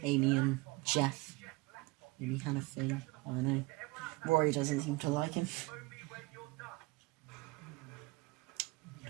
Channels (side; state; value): left; quieter; 23.8 dB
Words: Amy and Jeff maybe had a thing. I don't know. Rory doesn't seem to like him.